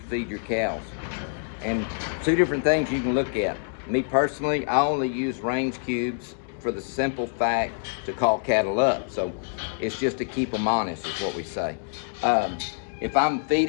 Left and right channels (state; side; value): silent; right; digital silence